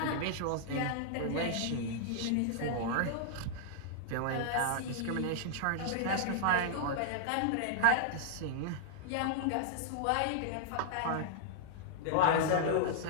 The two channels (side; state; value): both; different; correlation -0.01